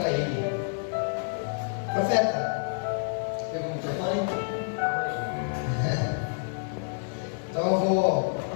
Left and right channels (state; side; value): silent; right; digital silence